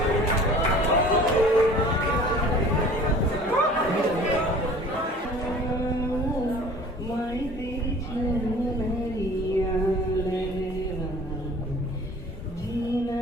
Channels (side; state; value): both; normal; correlation 0.47